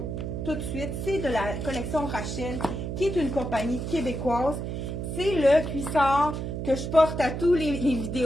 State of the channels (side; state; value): right; noise; hum, 4 dB below the sound